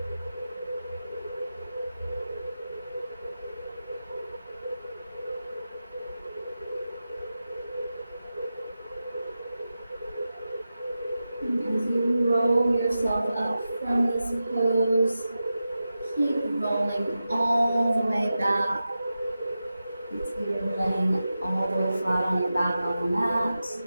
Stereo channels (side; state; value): both; inverted; correlation -0.92